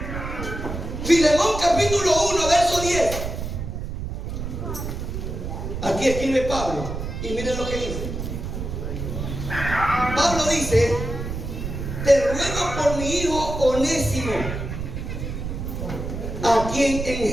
Filemón capítulo 1 verso 10. Aquí escribe Pablo. Y miren lo que dice. Pablo dice, te ruego por mi hijo Onésimo, a quien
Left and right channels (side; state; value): right; noise; rumble, 5 dB below the sound